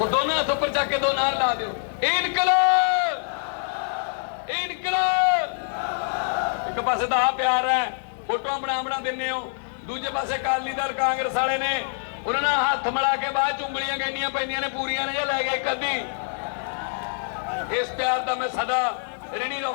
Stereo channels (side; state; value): right; silent; 62 dB below the other